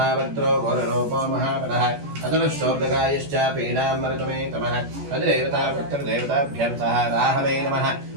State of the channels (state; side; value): late; left; 14 ms